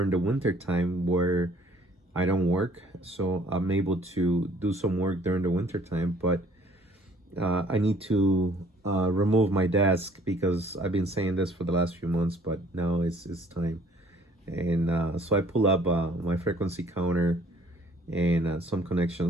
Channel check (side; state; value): both; normal; correlation 0.57